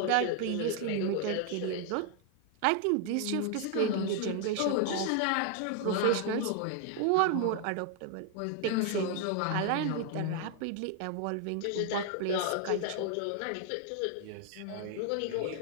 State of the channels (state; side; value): different; both; correlation 0.00